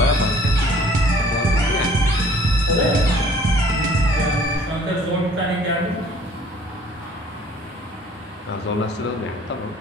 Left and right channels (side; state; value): both; normal; correlation 0.55